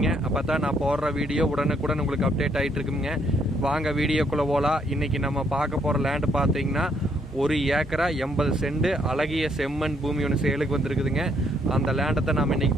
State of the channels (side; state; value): both; normal; correlation 0.70